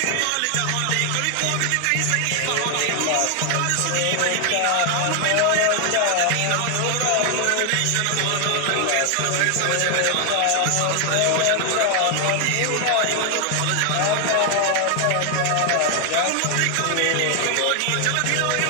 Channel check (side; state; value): both; different; correlation 0.00